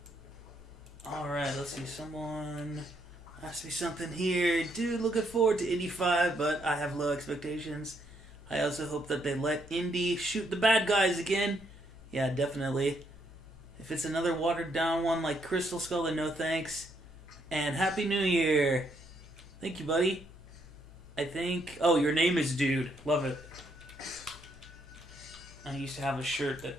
Alright, let's see. Someone asked me something here. Dude, looking forward to Indy 5, but I have low expectations. I also hope that they let Indy shoot the bad guys again. Yeah, definitely. If it's another watered down one like Crystal Skull, then no thanks. And Happy New Year. Thank you, buddy. I think... Oh, your name is Dude. Love it. I used to have a shirt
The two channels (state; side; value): normal; both; correlation 0.74